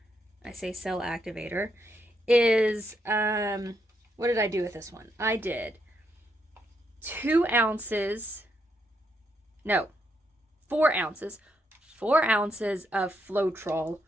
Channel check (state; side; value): normal; both; correlation 0.78